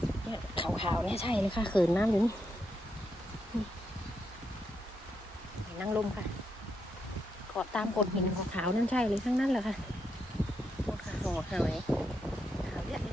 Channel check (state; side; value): normal; both; correlation 0.81